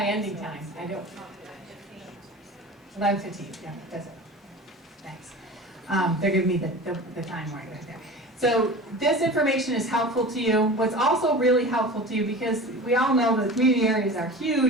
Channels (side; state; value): both; normal; correlation 0.35